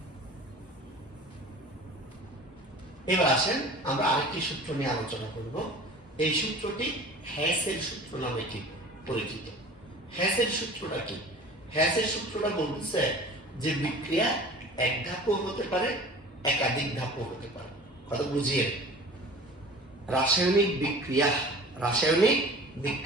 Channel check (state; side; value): normal; both; correlation 0.42